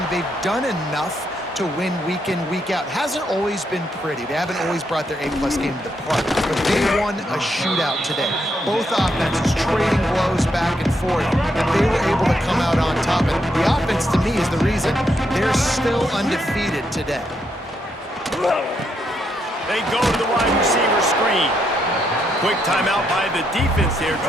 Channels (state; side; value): normal; both; correlation 0.78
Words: they've done enough to win week in, week out. Hasn't always been pretty. They haven't always brought their A-plus game to the park, but they won a shootout today. Both offenses trading blows back and forth, and they were able to come out on top. And the offense, to me, is the reason they're still undefeated today. They go to the wide receiver screen. Quick timeout by the defense here,